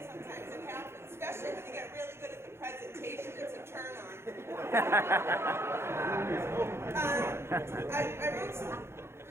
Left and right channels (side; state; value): left; late; 0.12 ms